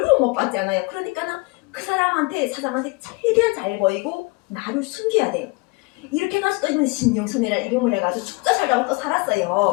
못 받잖아요. 그러니까 그 사람한테, 사장한테 최대한 잘 보이고 나를 숨겨야 돼요. 이렇게 나서 또 이번 신영선이라는 이름을 해가지고 죽자 살자고 또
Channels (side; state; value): right; quieter; 26.7 dB